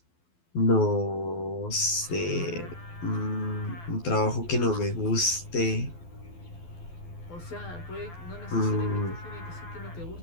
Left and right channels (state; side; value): late; right; 12 ms